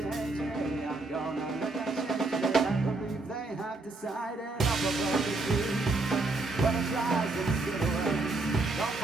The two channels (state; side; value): quieter; left; 3.2 dB